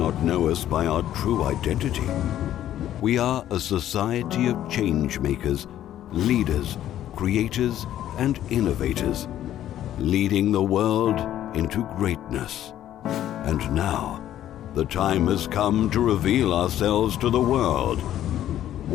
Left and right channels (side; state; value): right; quieter; 12.0 dB